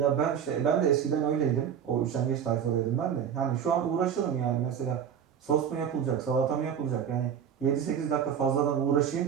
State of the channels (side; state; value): left; quieter; 8.3 dB